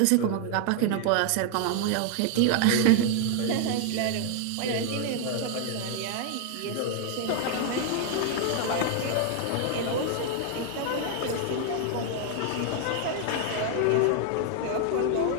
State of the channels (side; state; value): both; different; correlation 0.00